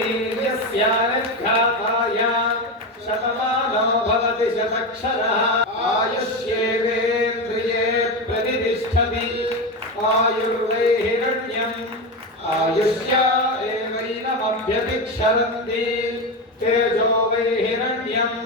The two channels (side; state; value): both; normal; correlation 0.17